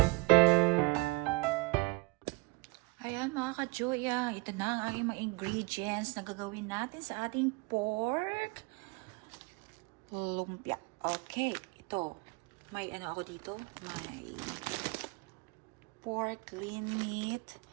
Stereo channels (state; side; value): quieter; left; 25.8 dB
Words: Ayan mga ka-joy, ito na ang aking mga ingredients na gagawin natin sa ating pork lumpia. Okay, ito. May ano ako dito? May pork lean meat.